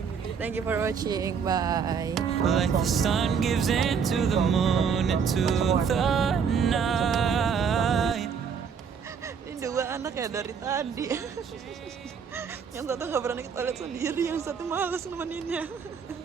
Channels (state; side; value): quieter; left; 6.5 dB